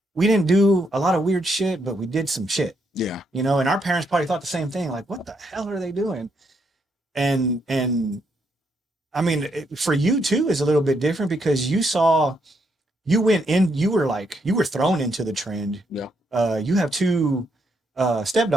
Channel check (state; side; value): normal; both; correlation 0.76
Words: didn't do a lot of weird shit, but we did some shit. Yeah. You know, and our parents probably thought the same thing. Like, what the hell are they doing? And I mean, for you too is a little bit different because you were thrown into the trend. Yeah. You have two